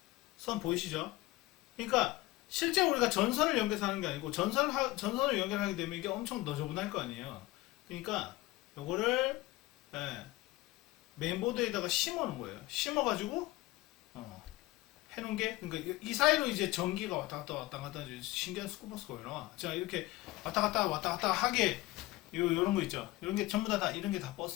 보이시죠? 그러니까 실제 우리가 전선을 연결해서 하는 게 아니고 전선을 연결하게 되면 이게 엄청 너저분할 거 아니에요. 그러니까 요거를, 예, 메인보드에다가 심어 놓은 거예요. 심어가지고 해놓은 게, 그러니까 이 사이로 이제 전기가 왔다 갔다 신기한 스쿠버스가 올라와. 자, 이렇게 왔다 갔다 하게 요런 거 있죠. 이런 게 전부 다 이런 게 다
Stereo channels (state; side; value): quieter; right; 18.9 dB